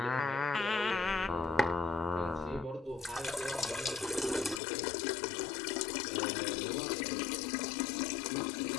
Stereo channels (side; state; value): right; drops out; at 4.6 s